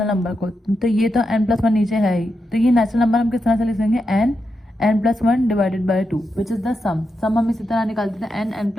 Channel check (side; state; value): both; normal; correlation 0.86